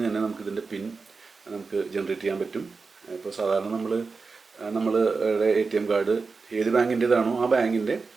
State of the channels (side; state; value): left; quieter; 4.4 dB